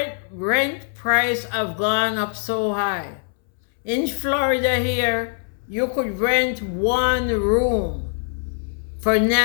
rent price have gone up so high. In Florida here, you could rent one room for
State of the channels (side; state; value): right; silent; 64 dB below the other